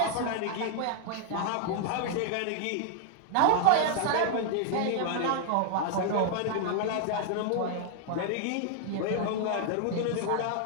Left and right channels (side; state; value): both; different; correlation -0.01